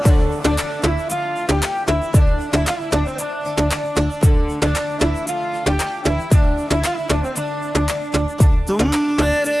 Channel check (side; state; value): both; normal; correlation 0.96